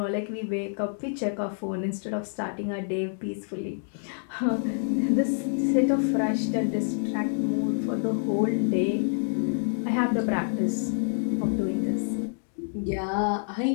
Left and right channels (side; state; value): right; silent; digital silence